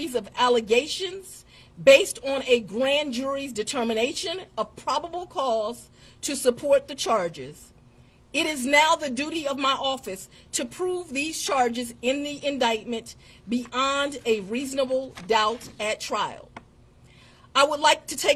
of allegations based on a grand jury's determination of probable cause to support the charges. It is now the duty of my office to prove these charges in the indictment beyond a reasonable doubt at trial. I would like to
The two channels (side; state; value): both; identical; correlation 1.00